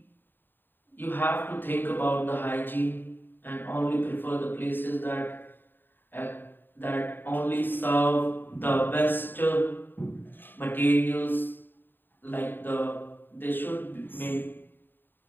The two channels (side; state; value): right; late; 0.094 ms